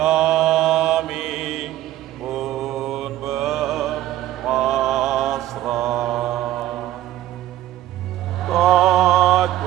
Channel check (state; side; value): quieter; left; 13.9 dB